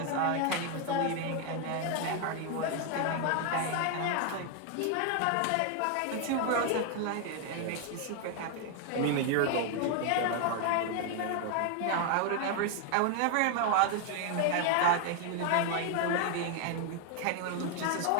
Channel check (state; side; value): different; both; correlation 0.00